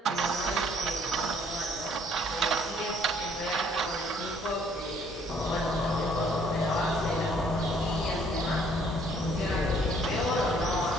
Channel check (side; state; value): both; normal; correlation 0.62